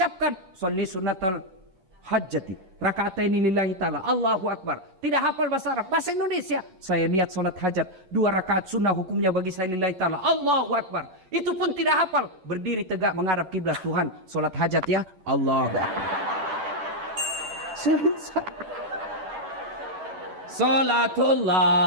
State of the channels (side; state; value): left; late; 11 ms